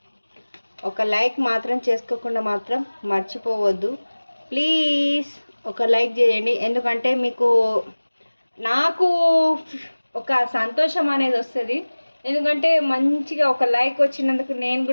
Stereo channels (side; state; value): both; inverted; correlation -1.00